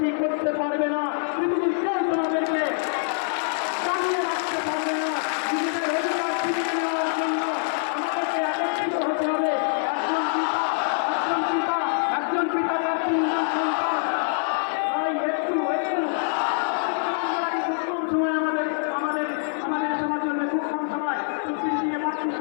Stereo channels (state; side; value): silent; right; digital silence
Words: করতে পারবে না পৃথিবীর কেউ তোমাদেরকে চালিয়ে রাখতে পারবে না নিজেদের অধিকার ফিরিয়ে নেওয়ার জন্য আমাদেরকে একত্রিত হতে হবে একজন পিতা তার তিনজন সন্তান তাই একটু সময় আমাদের সবার জন্য খুব কম সময় প্রতিদিন দিয়ে মাত্র